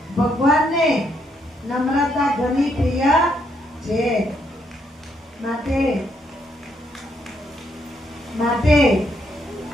ભગવાનને નમ્રતા ઘણી પ્રિય છે.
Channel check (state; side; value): normal; both; correlation 0.74